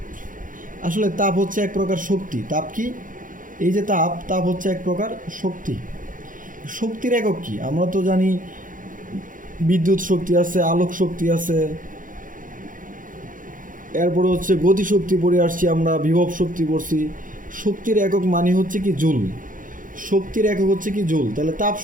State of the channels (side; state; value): left; late; 0.39 ms